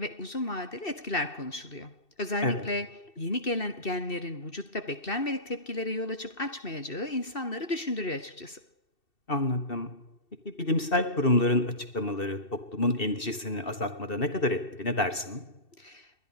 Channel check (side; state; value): right; late; 2.7 ms